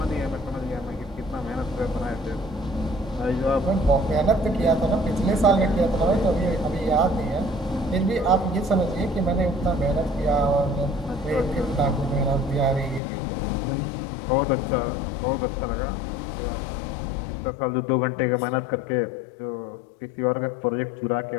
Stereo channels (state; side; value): drops out; right; at 13.0 s